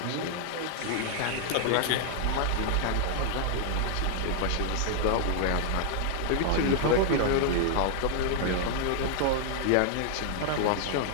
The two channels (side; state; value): both; different; correlation -0.01